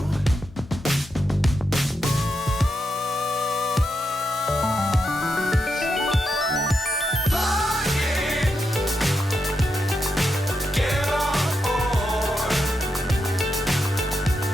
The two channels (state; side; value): normal; both; correlation 0.84